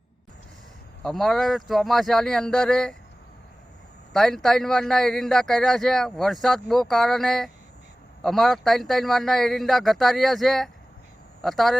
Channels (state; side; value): normal; both; correlation 0.97